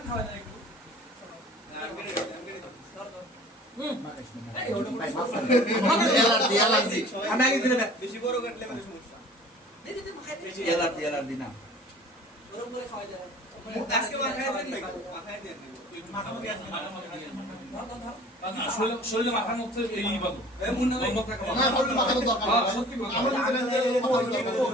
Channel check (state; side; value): normal; both; correlation 0.46